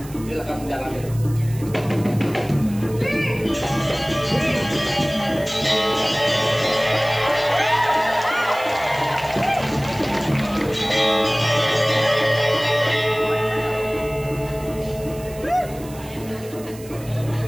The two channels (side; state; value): right; noise; hiss, 19 dB below the sound